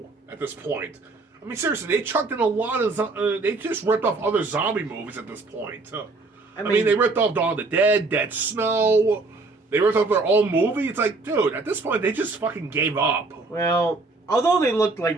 at this point. I mean, seriously, they chucked in a lot of... they just ripped off other zombie movies at this point. I mean, they ripped off Dawn of the Dead, Dead Snow. They ripped off their own movie. It's like, dude, at this point, they just fucking gave up. Well, although they looked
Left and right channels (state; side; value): quieter; left; 3.6 dB